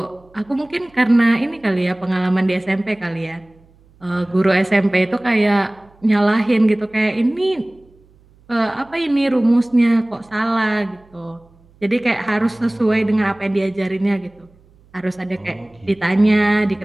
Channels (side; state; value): right; noise; hum, 30 dB below the sound